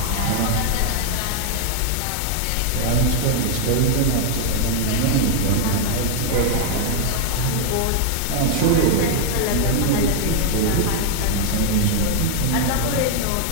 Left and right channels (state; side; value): different; both; correlation 0.00